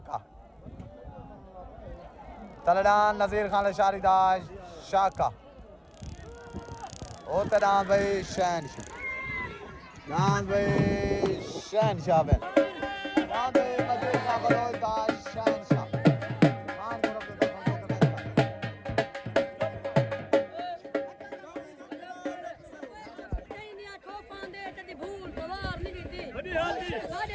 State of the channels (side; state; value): both; identical; correlation 1.00